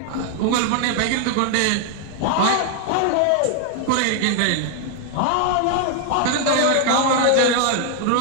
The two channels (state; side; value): different; both; correlation 0.00